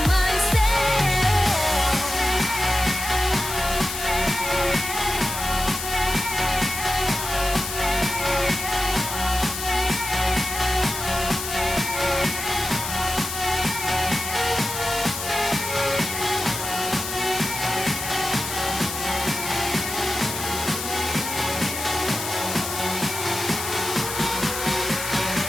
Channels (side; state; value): left; noise; hiss, 6 dB below the sound